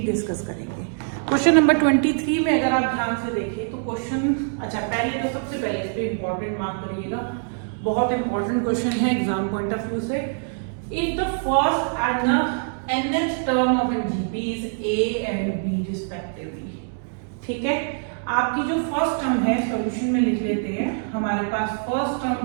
डिस्कस करेंगे। क्वेश्चन नंबर 23 में अगर आप ध्यान से देखें तो पहले तो सबसे पहले इस पे इंपॉर्टेंट मार्क करिएगा। बहुत इंपॉर्टेंट क्वेश्चन है एग्जाम पॉइंट ऑफ व्यू से। If the first and the nth term of an GP is A and B respectively। ठीक है, आपकी जो फर्स्ट टर्म है सॉल्यूशन में लिख लेते हैं। हमारे पास फर्स्ट टर्म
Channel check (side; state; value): left; silent; digital silence